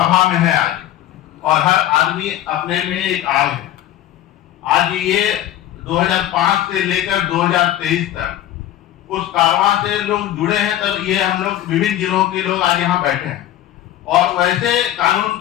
में है आज, और हर आदमी अपने में एक आग है। आज ये 2005 से लेकर 2023 तक उस कारवां से लोग जुड़े हैं, तब ये हम लोग विभिन्न जिलों के लोग आज यहाँ बैठे हैं। और वैसे कानून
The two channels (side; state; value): right; quieter; 12.8 dB